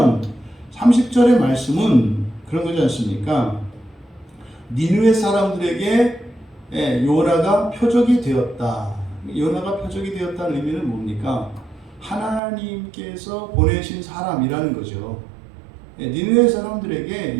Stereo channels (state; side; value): drops out; left; at 12.4 s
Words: 30절의 말씀은 그런 거지 않습니까? 니느웨 사람들에게 요나가 표적이 되었다. 요나가 표적이 되었다는 의미는 뭡니까? 하나님께서 보내신 사람이라는 거죠. 니느웨 사람들에게